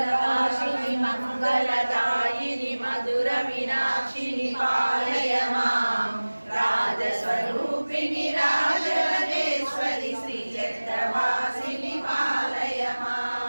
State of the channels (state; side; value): inverted; both; correlation -1.00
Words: मंगलदायिनी मधुर मीनाक्षिणी पालय मां राजस्वरूपिणी राजराजेश्वरी श्रीचक्रवासिनी पालय